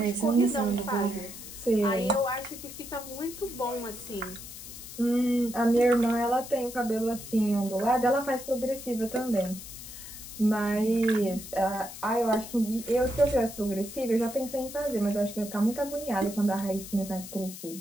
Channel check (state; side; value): noise; left; hiss, 12 dB below the sound